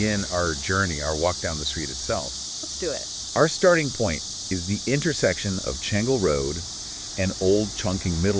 our journey, our walk down the street itself. Let's do it. Our starting point is the intersection of Changle Road and Old Chongqing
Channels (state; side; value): identical; both; correlation 1.00